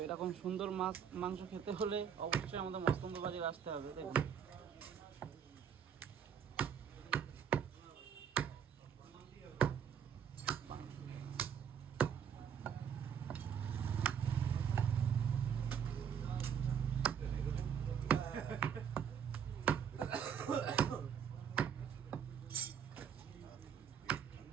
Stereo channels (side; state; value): left; quieter; 8.0 dB